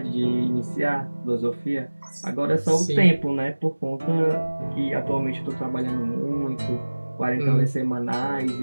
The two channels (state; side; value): inverted; both; correlation -1.00